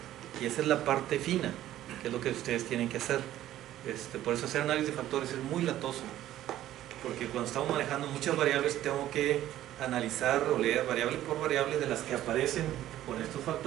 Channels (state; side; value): quieter; left; 13.3 dB